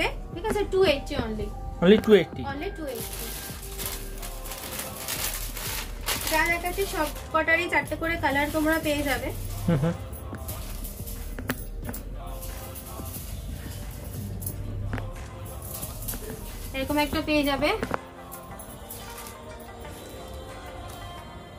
ঠিক আছে। 280 অনলি 280 অনলি 280। যা দেখাচ্ছি সব কটারই চারটে করে কালার তোমরা পেয়ে যাবে। এরকম একটা পেয়ে যাবে,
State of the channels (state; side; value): identical; both; correlation 1.00